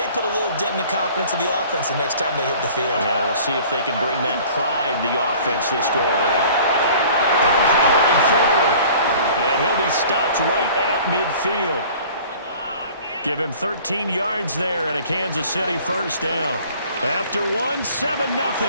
put a little dent in the confidence of the offense the next time they hit the field. Yeah, we'll see if they can bring that pride, the offense, this go around. Powering forward. And he'll be stopped right at midfield. Give him 13 yards there and a Kansas City 1st down. After one, 7-0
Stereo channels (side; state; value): both; inverted; correlation -0.48